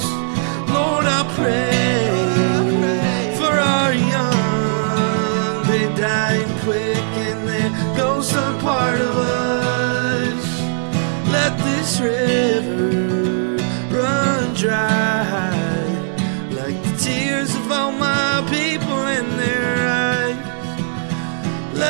Lord, I pray for our young. They're dying quick and their ghosts are part of us. Let this river run dry, like the tears of all my people in their eyes.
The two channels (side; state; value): left; silent; digital silence